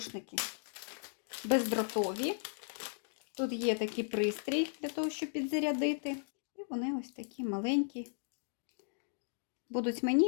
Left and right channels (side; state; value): right; silent; digital silence